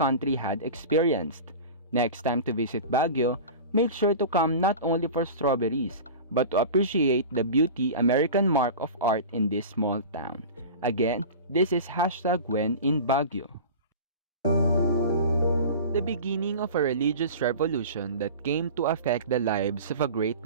had experienced. Next time to visit Baguio, make sure to come not only for strawberries, but to appreciate the beauty American mark of art in this small town. Again, this is #When in Baguio. The beginning of a religious revolution that came to affect the lives of a great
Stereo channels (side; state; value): both; inverted; correlation -0.33